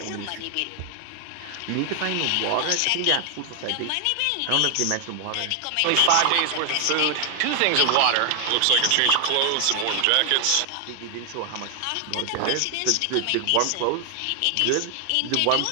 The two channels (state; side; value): different; both; correlation 0.00